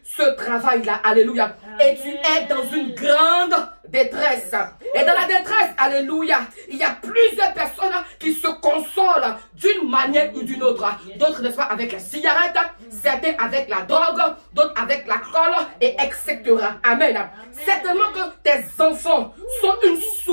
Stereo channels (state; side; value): inverted; both; correlation -1.00